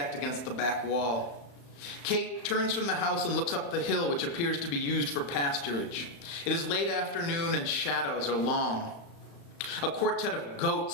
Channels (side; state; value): right; late; 35 ms